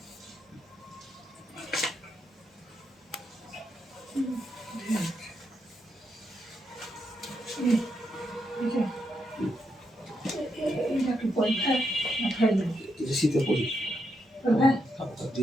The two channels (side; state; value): both; normal; correlation 0.81